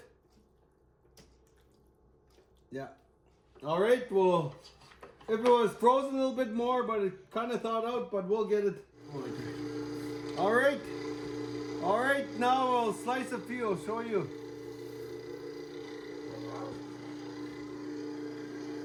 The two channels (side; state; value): both; identical; correlation 1.00